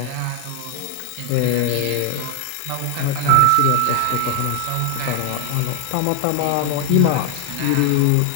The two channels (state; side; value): different; both; correlation 0.00